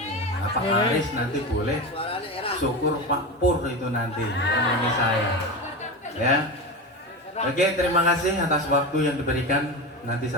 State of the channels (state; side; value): normal; both; correlation 0.22